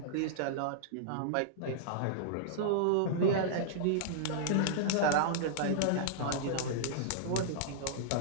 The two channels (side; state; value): both; different; correlation -0.02